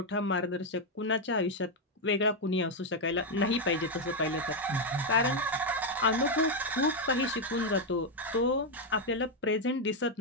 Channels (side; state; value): both; normal; correlation 0.03